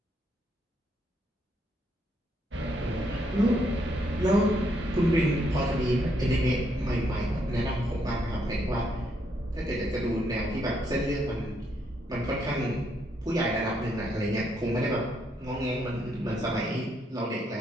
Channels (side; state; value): both; normal; correlation 0.74